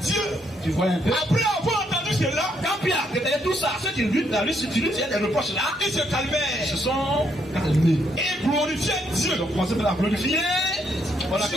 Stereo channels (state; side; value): normal; both; correlation 0.74